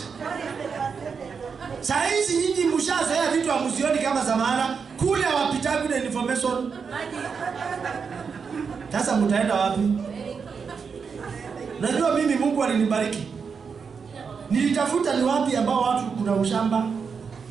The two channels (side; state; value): left; quieter; 5.8 dB